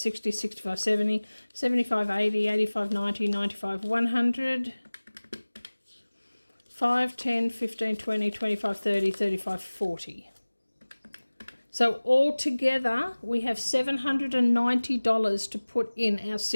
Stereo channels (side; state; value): both; inverted; correlation -1.00